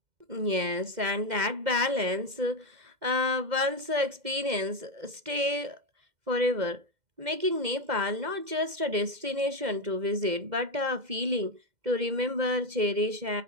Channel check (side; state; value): left; late; 2.1 ms